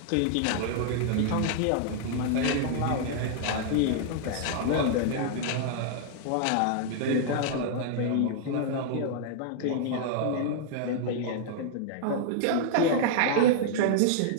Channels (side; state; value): both; different; correlation -0.01